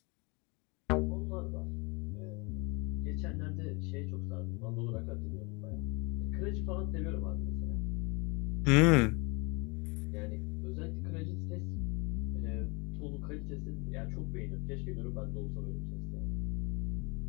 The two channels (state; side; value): quieter; right; 28.6 dB